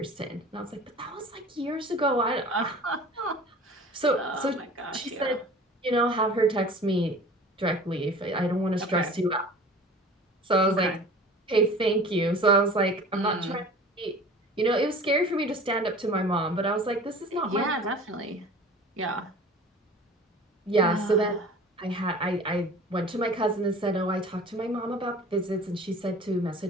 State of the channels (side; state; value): both; normal; correlation 0.42